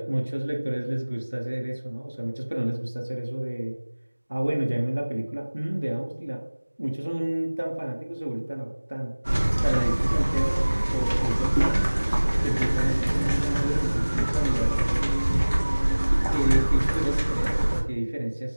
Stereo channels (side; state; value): both; inverted; correlation -1.00